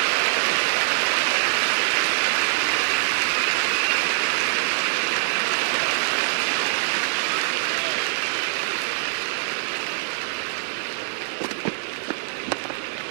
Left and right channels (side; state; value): left; silent; digital silence